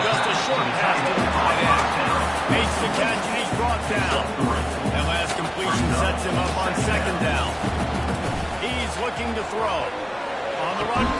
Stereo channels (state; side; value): identical; both; correlation 1.00